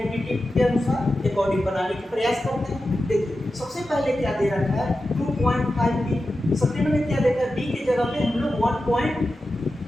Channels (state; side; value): normal; both; correlation 0.92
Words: के अनुसार अकॉर्डिंग बनाने का प्रयास करते हैं। देखिए सबसे पहले क्या दे रखा है 2.5 p, सेकंड में क्या देखा है b की जगह पे हम लोग 1.5